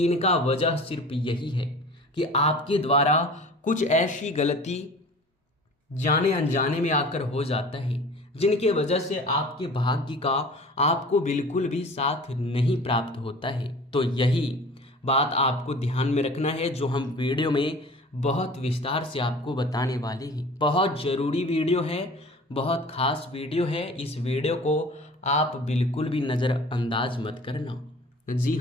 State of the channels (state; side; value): normal; both; correlation 0.42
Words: इनका वजह सिर्फ यही है कि आपके द्वारा कुछ ऐसी गलती जाने अनजाने में आकर हो जाता है जिनके वजह से आपके भाग्य का आपको बिल्कुल भी साथ नहीं प्राप्त होता है। तो यही बात आपको ध्यान में रखना है, जो हम वीडियो में बहुत विस्तार से आपको बताने वाले हैं। बहुत ज़रूरी वीडियो है, बहुत खास वीडियो है। इस वीडियो को आप बिल्कुल भी नज़रअंदाज मत करना। जी